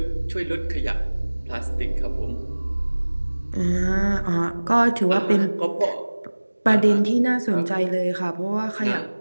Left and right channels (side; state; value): both; inverted; correlation -1.00